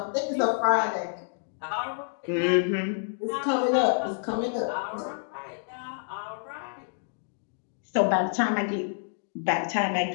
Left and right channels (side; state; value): right; silent; digital silence